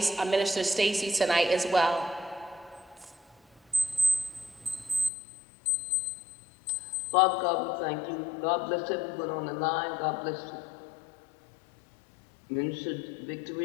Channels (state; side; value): drops out; right; at 5.1 s